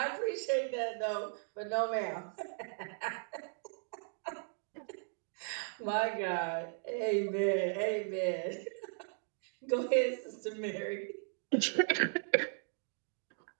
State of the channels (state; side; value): silent; left; digital silence